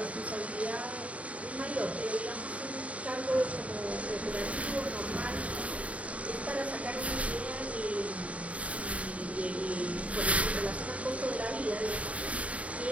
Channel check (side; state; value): left; late; 0.066 ms